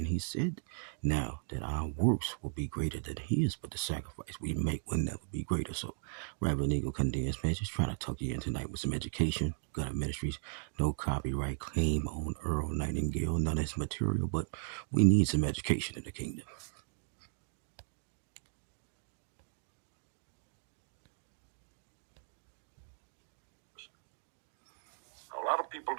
he said now that our works will be greater than his, but the sacrifice we make will never be greater. So, Reverend Eagle Condensed, man, just trying to talk you in tonight with some education. Got Ministries, no copyright claim on Earl Nightingale, none of his material, but we need some education in the kingdom. A lot of people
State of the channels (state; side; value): silent; left; digital silence